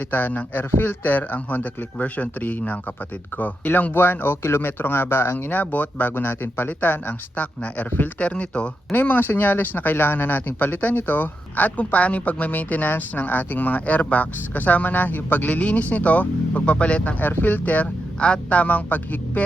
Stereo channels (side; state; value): both; normal; correlation 0.86